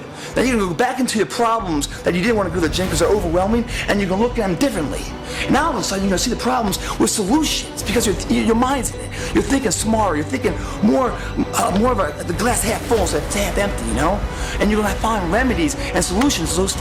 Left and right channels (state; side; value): identical; both; correlation 1.00